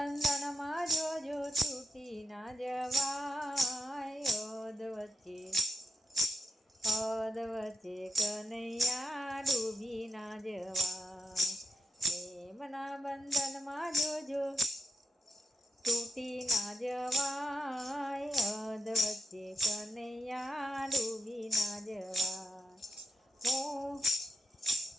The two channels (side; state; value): both; normal; correlation 0.87